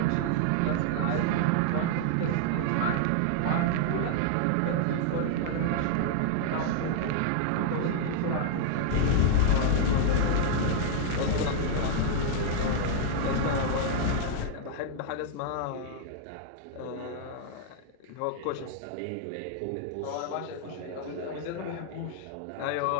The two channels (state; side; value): different; both; correlation -0.01